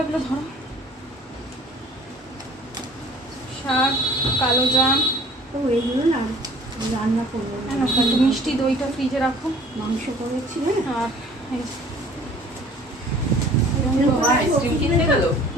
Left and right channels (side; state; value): both; normal; correlation 0.51